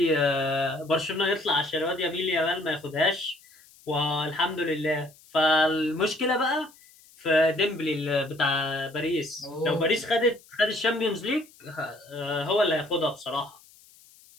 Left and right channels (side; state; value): left; noise; hiss, 26 dB below the sound